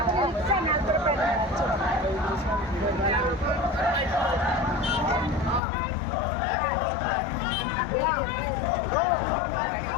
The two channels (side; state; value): right; drops out; at 5.6 s